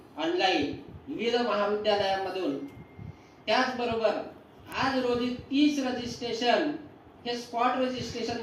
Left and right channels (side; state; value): both; identical; correlation 1.00